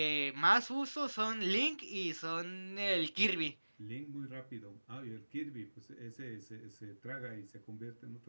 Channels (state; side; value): inverted; both; correlation -1.00